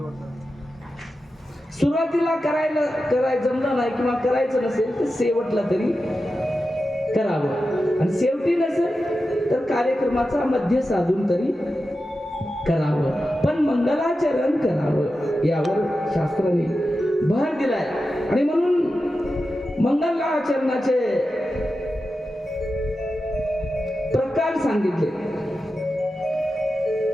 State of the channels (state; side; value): normal; both; correlation 0.92